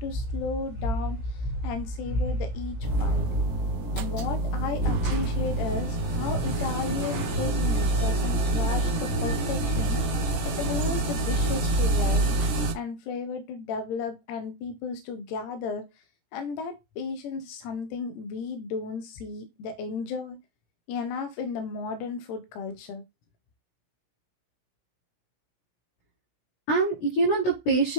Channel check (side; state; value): right; late; 17 ms